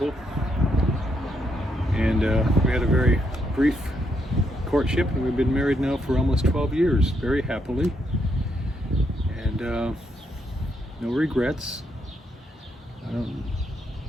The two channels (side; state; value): both; normal; correlation 0.77